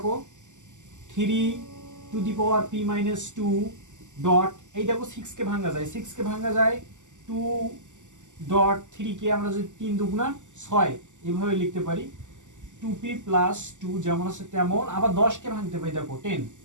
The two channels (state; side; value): late; left; 0.85 ms